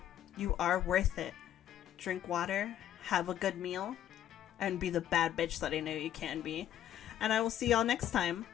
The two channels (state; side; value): quieter; right; 11.2 dB